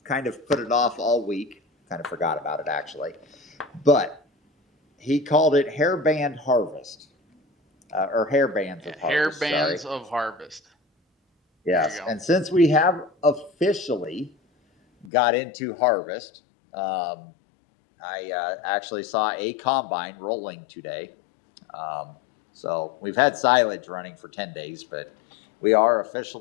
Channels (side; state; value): right; drops out; at 15.1 s